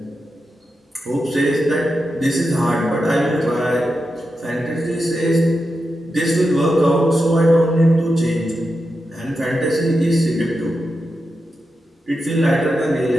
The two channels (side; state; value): both; normal; correlation 0.89